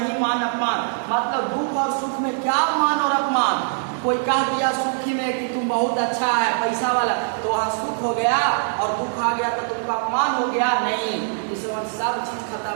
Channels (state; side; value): silent; left; digital silence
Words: मान अपमान, मतलब दुख और सुख में क्या मान और अपमान। कोई कह दिया सुखी में कि तुम बहुत अच्छा है, पैसा वाला, तो वहाँ सुख हो गया और दुख आ गया तो तुमका अपमान हो गया? नहीं, इस समय सब चीज